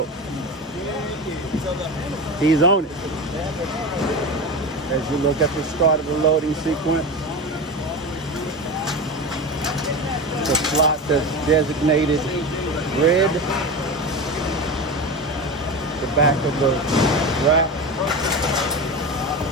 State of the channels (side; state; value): both; normal; correlation 0.24